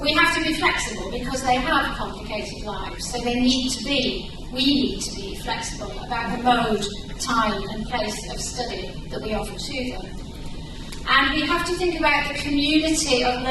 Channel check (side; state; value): both; identical; correlation 1.00